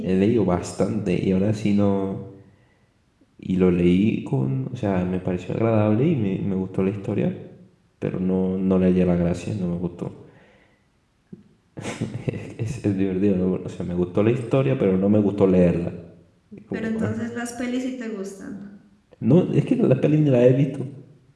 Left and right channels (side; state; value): both; identical; correlation 1.00